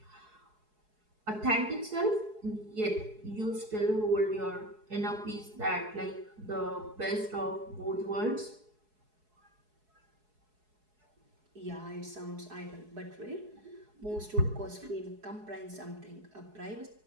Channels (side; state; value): left; late; 4.7 ms